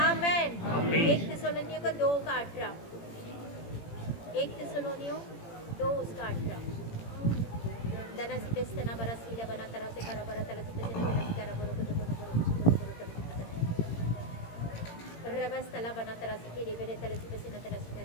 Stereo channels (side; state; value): right; late; 18 ms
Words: 1 थिस्सलुनीयों को 2 का 18, 1 थिस्सलुनीयों 2 उसका 18। दनसी पेस्तना बरसीला बना तरह से करा बरा तलसी पेस्तना तलसी करा बोरो को रबस्तला बना तरह से के रे तलसी पेस्तना तलसी